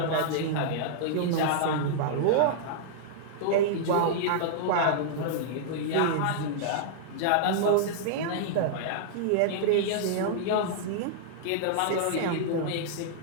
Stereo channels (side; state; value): both; different; correlation -0.01